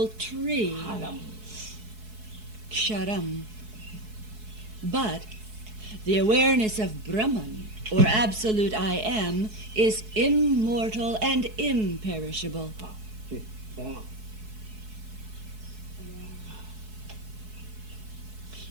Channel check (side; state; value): left; late; 4.7 ms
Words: tree, Ksharam. But the awareness of Brahman, or absolute I Am, is immortal and imperishable.